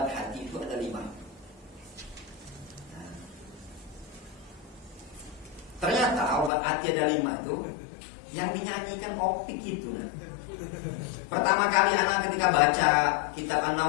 hati itu ada 5. Ternyata obat hati ada 5 itu yang dinyanyikan opik itu. Pertama kali anak ketika baca kitab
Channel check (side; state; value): right; drops out; at 6.5 s